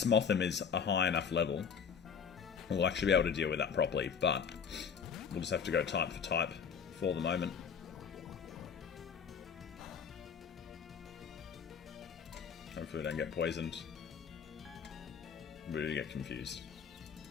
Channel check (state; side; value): quieter; right; 6.7 dB